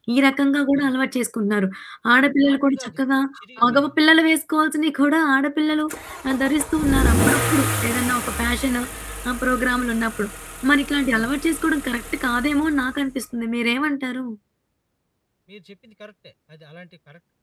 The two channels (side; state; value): both; identical; correlation 1.00